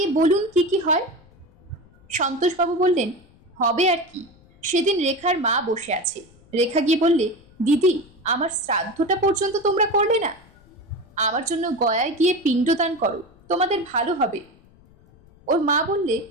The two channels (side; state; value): left; noise; rumble, 28 dB below the sound